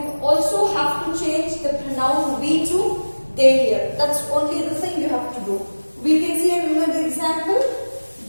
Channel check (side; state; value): both; inverted; correlation -1.00